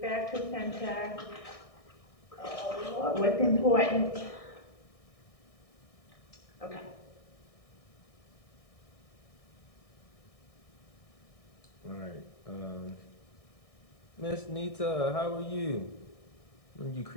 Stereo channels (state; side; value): late; right; 1.6 ms